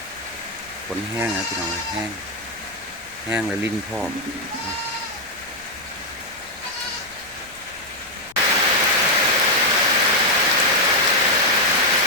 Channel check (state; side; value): noise; left; rumble, 27 dB below the sound